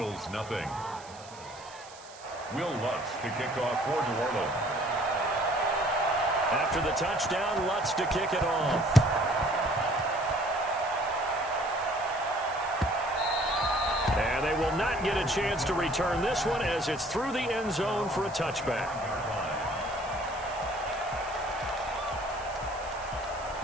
0. Will Lutz to kick off for New Orleans. After the touchdown, Lutz to kick it off. And they will not get a chance to return this one as it's through the end zone for a touchback.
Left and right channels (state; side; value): noise; right; hiss, 19 dB below the sound